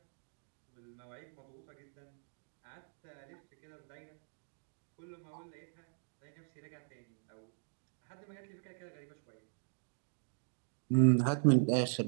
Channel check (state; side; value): silent; left; digital silence